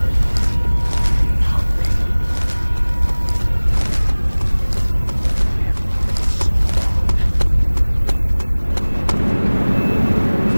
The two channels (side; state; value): both; inverted; correlation -1.00